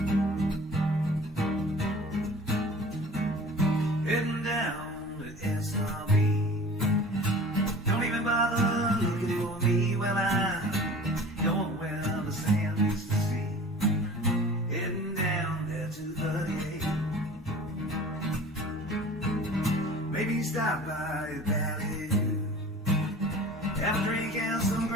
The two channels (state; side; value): normal; both; correlation 0.42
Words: Heading down to SRB. Don't even bother looking for me. Well, I'm going where the sand used to see. Heading down there to 38. Maybe stop by a valley. Have a drink and some